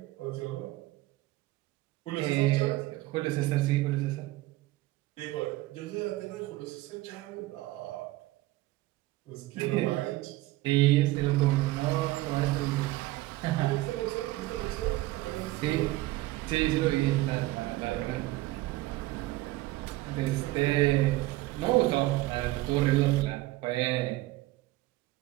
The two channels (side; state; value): left; quieter; 18.2 dB